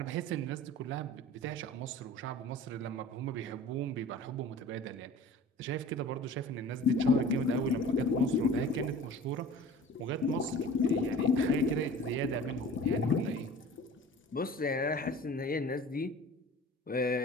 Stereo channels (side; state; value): both; normal; correlation 0.42